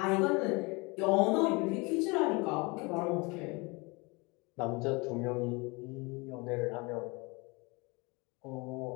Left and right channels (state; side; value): quieter; right; 27.1 dB